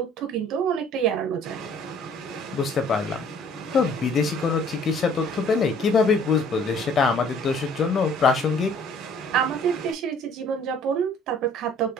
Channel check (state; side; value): normal; both; correlation 0.56